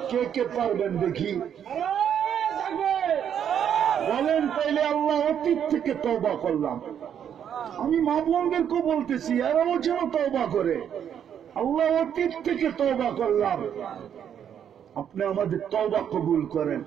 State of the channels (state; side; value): quieter; left; 8.9 dB